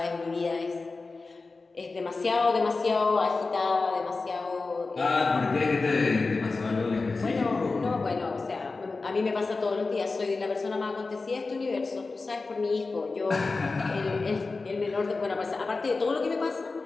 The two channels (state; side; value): quieter; right; 3.8 dB